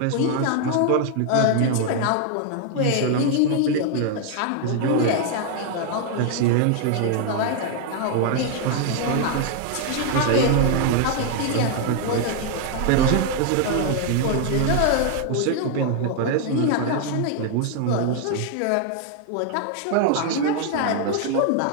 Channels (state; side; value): different; both; correlation 0.00